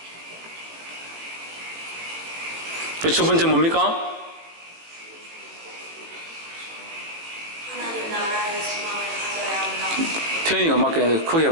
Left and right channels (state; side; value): late; left; 18 ms